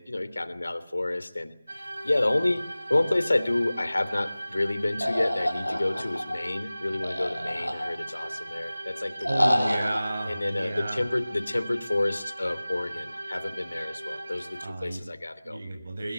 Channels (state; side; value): inverted; both; correlation -0.98